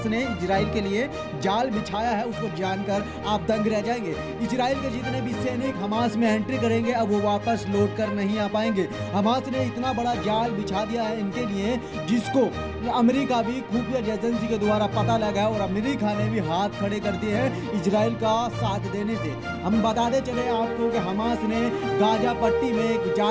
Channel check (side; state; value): both; identical; correlation 1.00